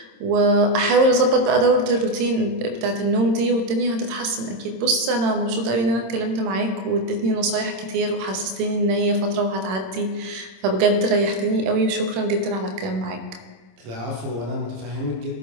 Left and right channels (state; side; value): late; left; 26 ms